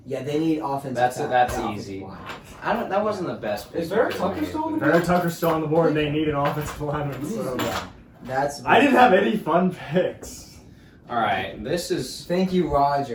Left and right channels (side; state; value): both; identical; correlation 1.00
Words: Yeah, they need offensive. That's offensive easy. line. That wasn't the best pick. Is Vera because Tucker I made, still on but- the Vera Tucker's still on the board and they need an offensive lineman. So. That's. I didn't have any fun picks. All right, this is. Thank you,